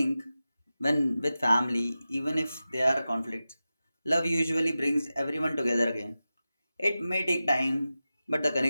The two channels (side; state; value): both; inverted; correlation -0.94